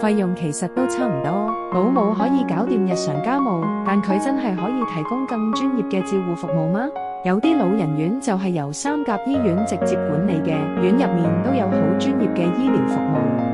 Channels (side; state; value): both; identical; correlation 1.00